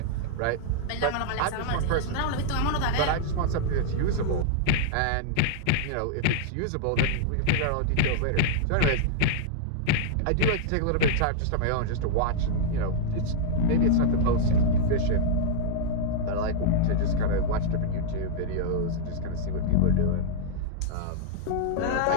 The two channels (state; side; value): different; both; correlation -0.01